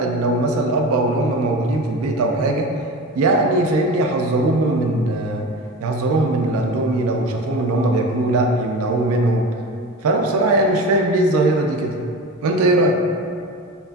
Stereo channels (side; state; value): both; normal; correlation 0.30